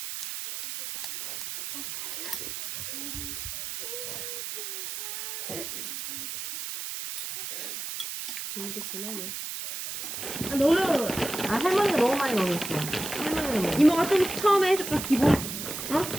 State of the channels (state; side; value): noise; right; hiss, 6 dB below the sound